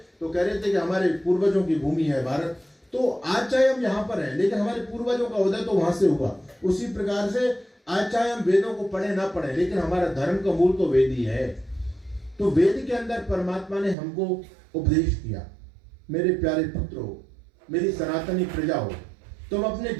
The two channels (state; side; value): drops out; left; at 14.0 s